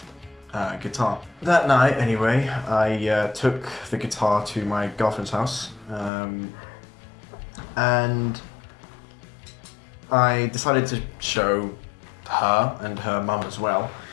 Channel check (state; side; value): drops out; right; at 6.1 s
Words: guitar. That night, anyway, I took the guitar to my girlfriend's house, and I decided to show her and her mum as well.